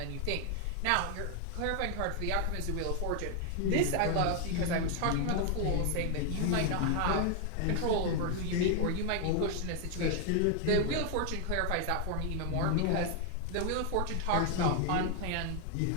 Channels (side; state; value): both; different; correlation 0.00